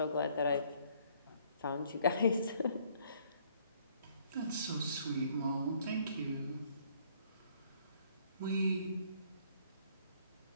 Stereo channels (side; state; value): both; inverted; correlation -0.63